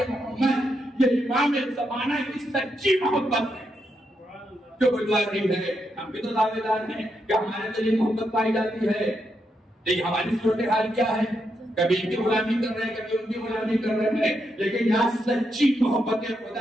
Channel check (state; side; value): normal; both; correlation 0.82